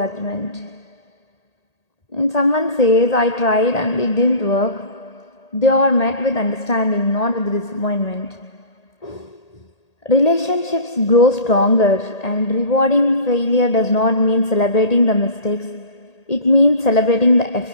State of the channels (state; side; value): late; right; 1.8 ms